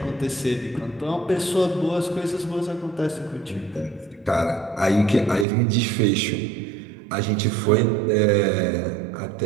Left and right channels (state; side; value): drops out; left; at 5.5 s